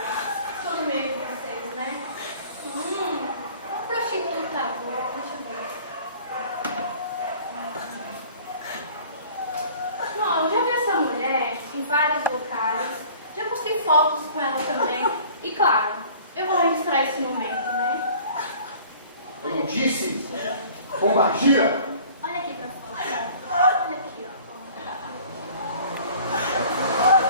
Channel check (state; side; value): inverted; both; correlation -0.48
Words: Estou no meio de vocês, né? Uma prostituta boa. Deixa eu ver. Bom, eu já vi essa mulher em vários locais. Já postei fotos com ela também. E claro, eu vou registrar esse momento, né? Eu não disse? Pombagira? Olha aqui pra fora. Olha aqui, ó.